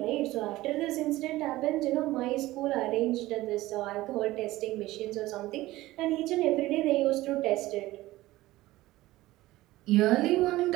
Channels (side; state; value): left; quieter; 17.5 dB